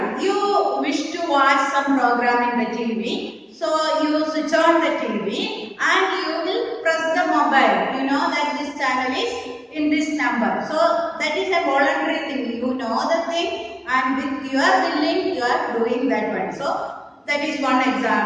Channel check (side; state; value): both; identical; correlation 1.00